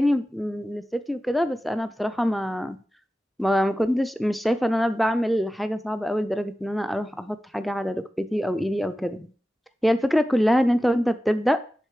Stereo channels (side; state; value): both; normal; correlation 0.94